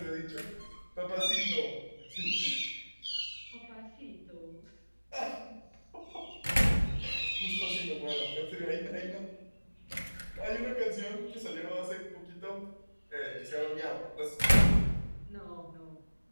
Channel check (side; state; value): both; inverted; correlation -1.00